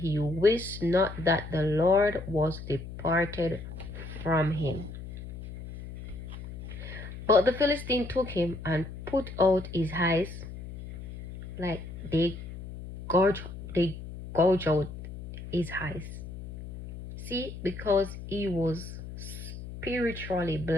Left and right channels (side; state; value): left; noise; hum, 11 dB below the sound